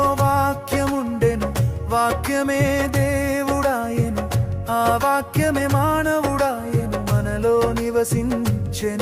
వాక్యముండెను, వాక్యమే దేవుడాయెను, ఆ వాక్యమే మానవుడాయెను, మనలో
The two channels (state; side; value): identical; both; correlation 1.00